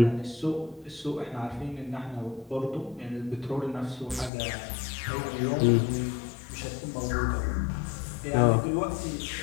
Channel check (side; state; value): right; drops out; at 4.3 s